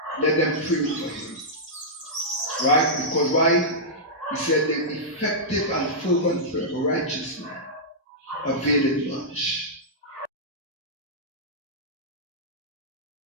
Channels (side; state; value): both; normal; correlation -0.11